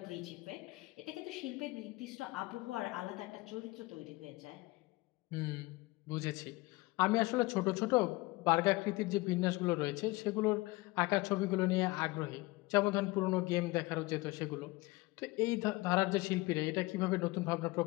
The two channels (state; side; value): quieter; right; 21.9 dB